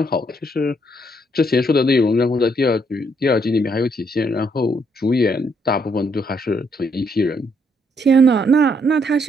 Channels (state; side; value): normal; both; correlation 0.72